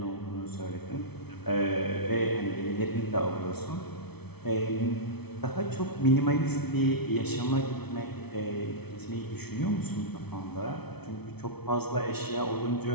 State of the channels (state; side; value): late; right; 0.98 ms